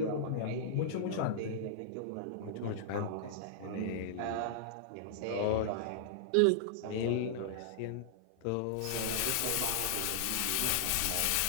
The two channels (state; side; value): different; both; correlation -0.01